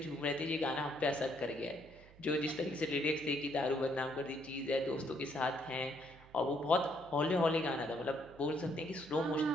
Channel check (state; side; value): noise; right; hum, 22 dB below the sound